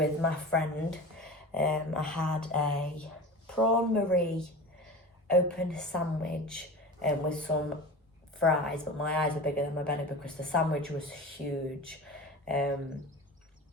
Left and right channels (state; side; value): normal; both; correlation 0.32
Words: my friend. I had a prawn marie open sandwich with some fries, but my eyes were bigger than my belly because the sandwich was huge. And